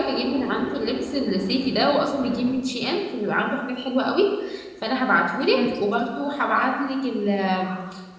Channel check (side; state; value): both; identical; correlation 1.00